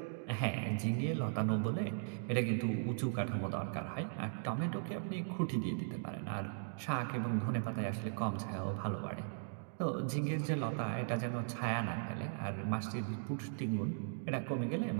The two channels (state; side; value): silent; left; digital silence